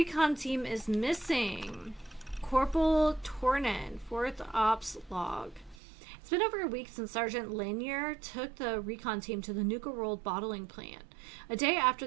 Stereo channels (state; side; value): drops out; left; at 5.8 s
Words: team is missing. Corporal Tornin, 4th Ops log. It's been over a week since Sergeant Lanier took the recon team to the Nuka World bottling plant. A day after